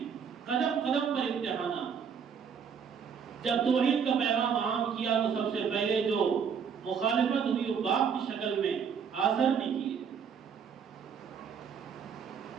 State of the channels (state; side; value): quieter; left; 6.9 dB